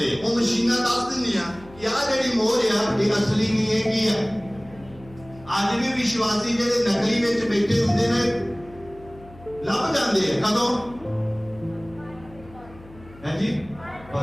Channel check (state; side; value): noise; left; hum, 21 dB below the sound